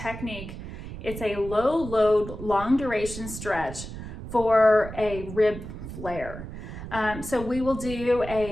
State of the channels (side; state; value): right; noise; rumble, 10 dB below the sound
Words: It's a low load, long duration stretch for a rib flare. So we will do